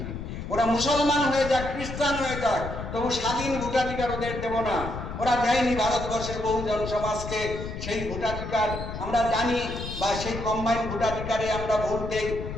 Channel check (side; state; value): left; noise; rumble, 7 dB below the sound